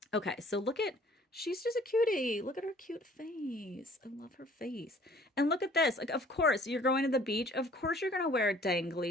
Okay, so she's just a cutie. Look at her cute face. I love her face. And look at this. Like, of course, you're going to the beach. Of course, you're going to wear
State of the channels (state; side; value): normal; both; correlation 0.54